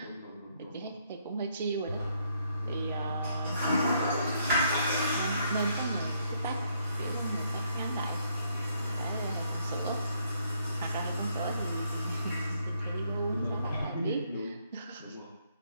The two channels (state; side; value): inverted; both; correlation -0.72